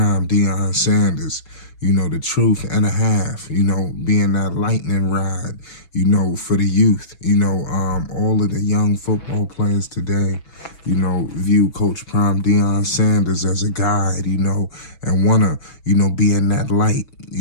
Deion Sanders. You know, the truth and a half, you know, being that lightning rod, you know, for the youth. You know, all of the young football players today, you know, view Coach Prime Deion Sanders as a guide, you know, and want to, you know, be in that light,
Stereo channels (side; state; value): right; late; 6.1 ms